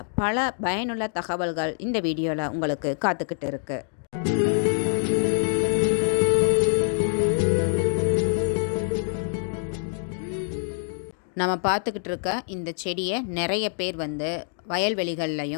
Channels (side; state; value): right; silent; digital silence